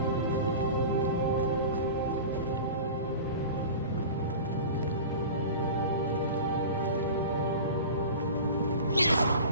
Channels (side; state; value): both; inverted; correlation -0.35